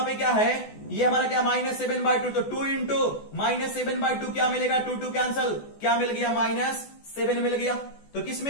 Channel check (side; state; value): right; late; 14 ms